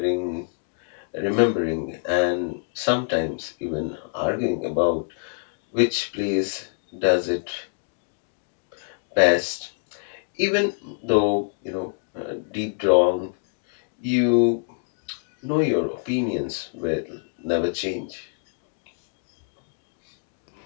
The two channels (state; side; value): silent; right; digital silence